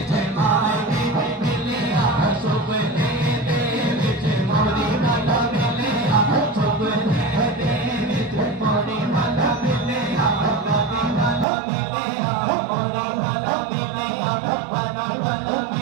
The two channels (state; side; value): drops out; left; at 11.5 s